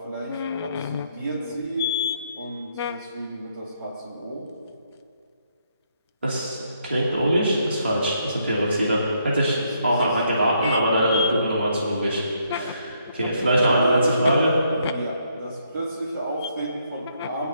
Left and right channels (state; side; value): inverted; both; correlation -0.73